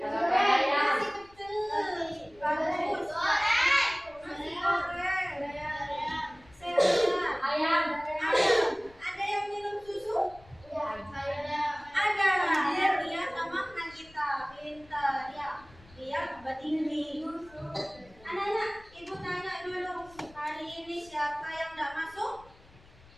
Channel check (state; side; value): noise; left; rumble, 25 dB below the sound